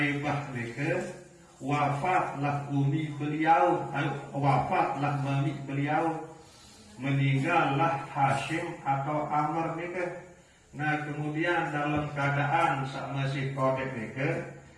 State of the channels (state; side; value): identical; both; correlation 1.00